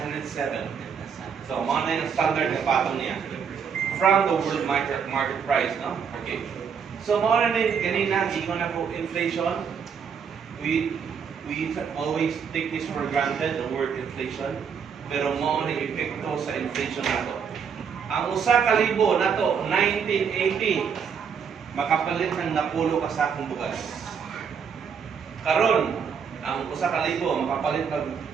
107. So, mo na yung standard na patong niya. From the world market price, no? Okay. So, mo na kanina, gingon na po inflation. We always take this for granted, the word inflation. Pero mo na epekto sa inflation nato. Ang usa ka libo nato 1980 makapalit ng napulo ka sakong bugas. Karon, ang usa ka libo makapalit ng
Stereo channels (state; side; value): quieter; left; 6.8 dB